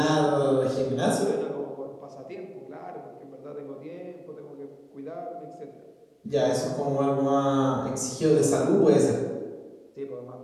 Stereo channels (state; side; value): identical; both; correlation 1.00